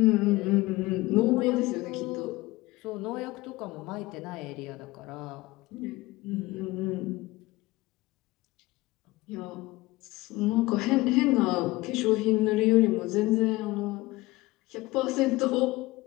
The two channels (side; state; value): right; quieter; 20.1 dB